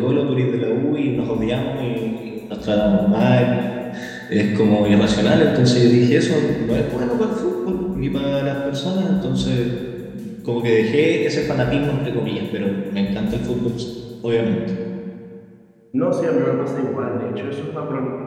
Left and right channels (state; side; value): identical; both; correlation 1.00